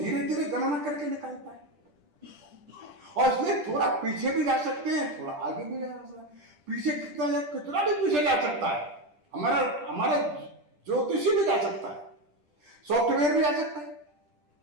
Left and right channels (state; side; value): late; left; 10 ms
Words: धीरे गणना करके निकालता है। और इसलिए थोड़ा पीछे भी जा सकते हैं, थोड़ा आगे भी जा सकते हैं। पीछे कितना भी पीछे जा सकता है, हमारा ज्योतिषी भी जा सकता है, सॉफ्टवेयर भी जा सकता है।